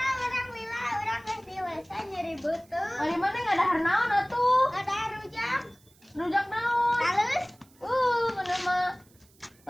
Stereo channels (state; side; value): noise; right; hiss, 30 dB below the sound